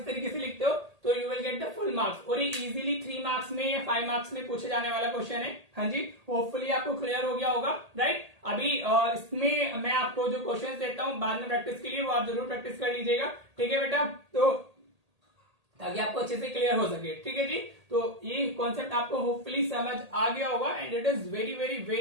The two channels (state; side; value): late; left; 1.8 ms